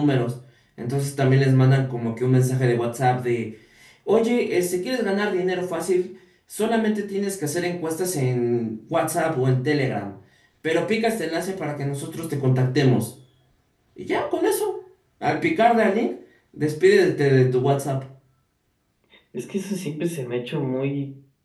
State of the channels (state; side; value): identical; both; correlation 1.00